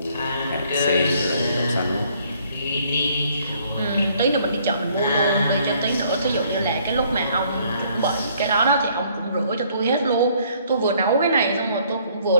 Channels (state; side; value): inverted; both; correlation -0.63